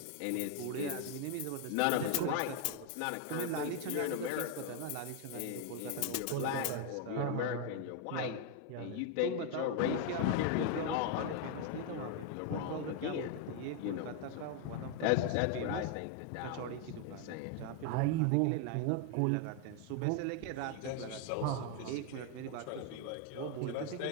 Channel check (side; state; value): both; different; correlation 0.01